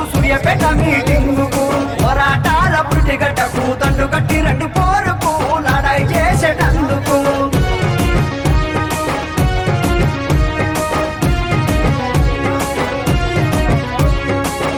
సూర్యాపేట మీటింగుకు పోరాటాల పురిటిగడ్డకు దండుగట్టి రండి పోరుకు లడాయి చేసేటందుకు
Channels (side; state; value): both; identical; correlation 1.00